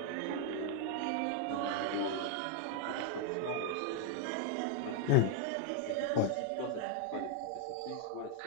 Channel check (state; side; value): different; both; correlation 0.00